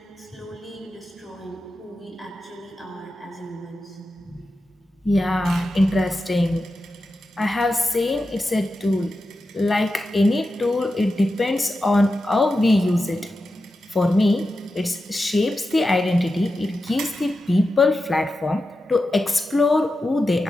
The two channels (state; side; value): normal; both; correlation 0.91